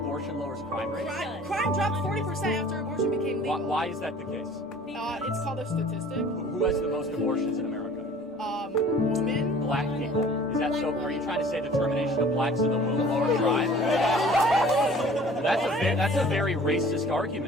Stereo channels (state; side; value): normal; both; correlation 0.49